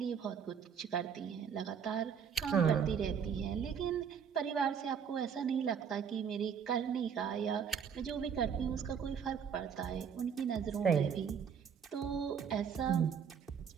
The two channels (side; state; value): left; quieter; 7.2 dB